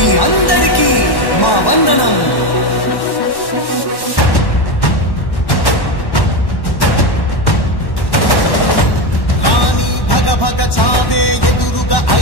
అందరికీ మా వందనం.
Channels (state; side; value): late; right; 1.1 ms